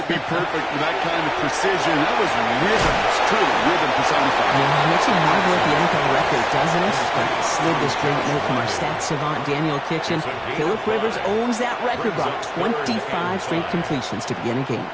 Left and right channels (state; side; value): identical; both; correlation 1.00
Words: be perfect with that kind of precision. That was rhythm. It's truly rhythm personified. Yeah, it makes you marvel at the NFL record, doesn't it? Slid this great note from our stats savant, Daniel Kitchen. Phillip Rivers owns that record, Brock. 25 straight completions to begin a game.